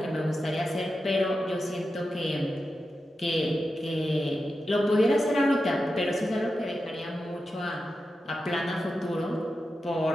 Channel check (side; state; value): both; normal; correlation 0.90